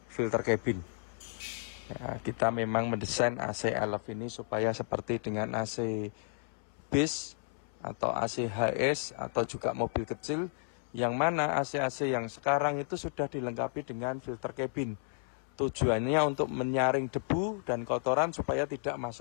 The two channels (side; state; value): right; silent; 56 dB below the other